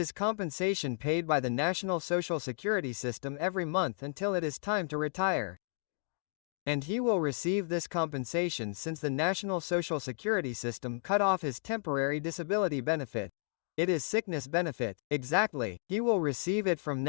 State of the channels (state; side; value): silent; right; digital silence